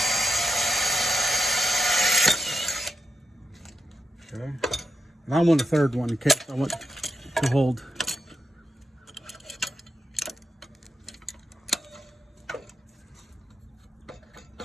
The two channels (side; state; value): both; normal; correlation 0.88